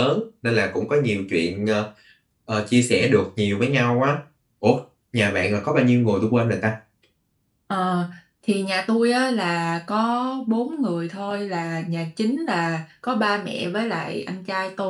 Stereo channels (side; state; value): both; identical; correlation 1.00